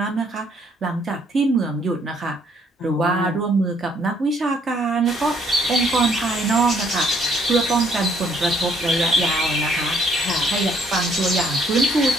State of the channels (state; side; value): normal; both; correlation 0.66